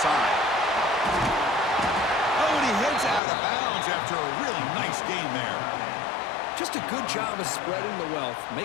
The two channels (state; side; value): drops out; right; at 3.2 s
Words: side. Oh, and he heads out of bounds after a really nice game there. Just a good job of spreading the wealth,